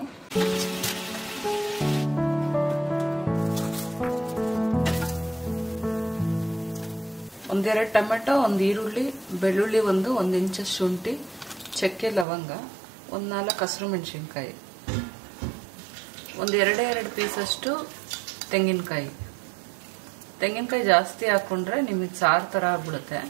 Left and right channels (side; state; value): left; drops out; at 12.2 s